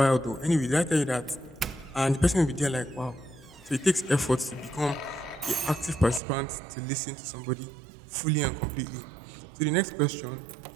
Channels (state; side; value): drops out; left; at 6.2 s